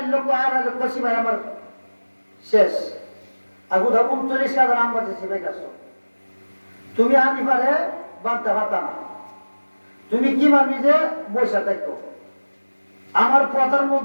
লক্ষ 8 লক্ষ সিপাই আমার শেষ, আর কোথাও 39,000 আমবাদী সিপাই কাছ। তুমি হানিফারে বাঁধতে পারতা না, তুমি কি মানবি যে বৈশা থাকতো। আমার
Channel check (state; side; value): inverted; both; correlation -1.00